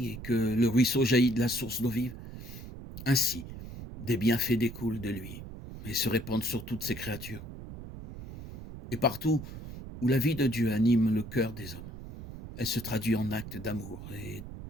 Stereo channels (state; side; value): noise; right; rumble, 12 dB below the sound